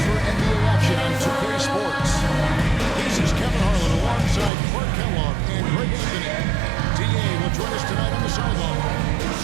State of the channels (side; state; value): left; drops out; at 4.5 s